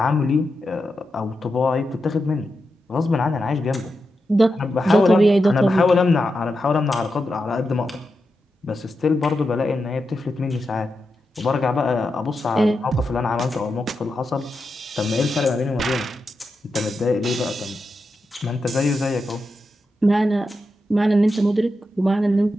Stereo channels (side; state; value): both; normal; correlation 0.88